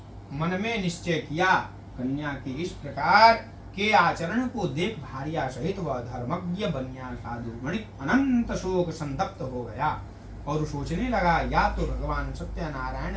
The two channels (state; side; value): identical; both; correlation 1.00